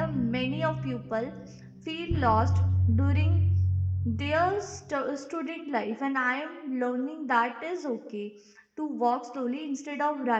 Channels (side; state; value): both; identical; correlation 1.00